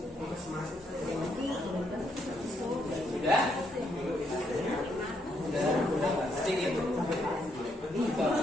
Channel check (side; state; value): both; normal; correlation 0.75